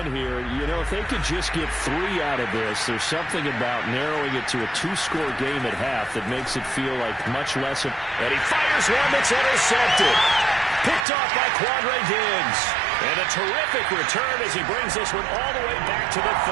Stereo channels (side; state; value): left; drops out; at 11.1 s